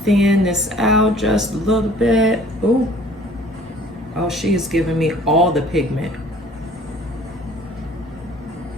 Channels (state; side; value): normal; both; correlation 0.52